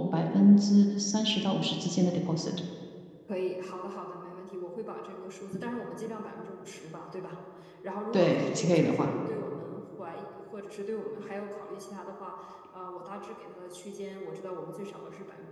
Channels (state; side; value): identical; both; correlation 1.00